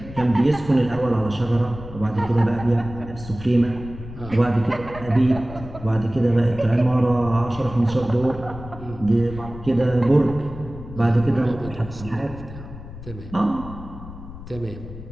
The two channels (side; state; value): left; noise; rumble, 13 dB below the sound